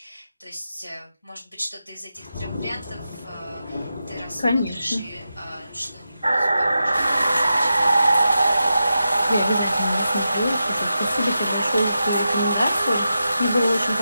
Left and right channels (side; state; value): both; inverted; correlation -0.89